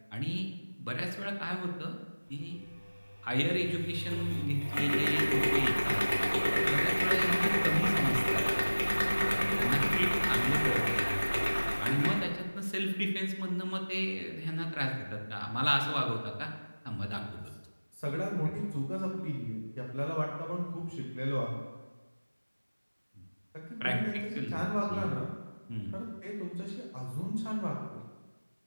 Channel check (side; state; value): both; inverted; correlation -1.00